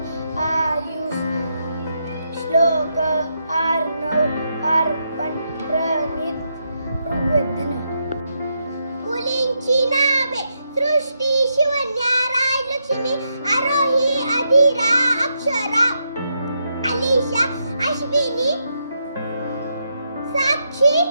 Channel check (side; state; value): both; inverted; correlation -0.81